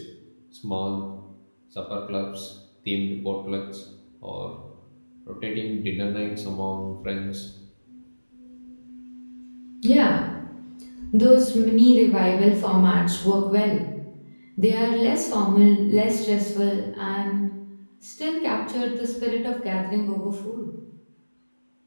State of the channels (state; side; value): inverted; both; correlation -1.00